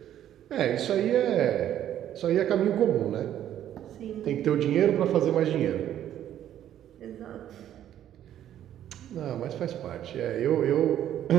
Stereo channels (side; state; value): left; quieter; 11.2 dB